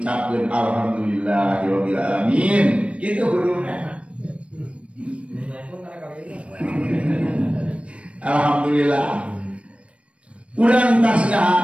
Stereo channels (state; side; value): late; left; 0.061 ms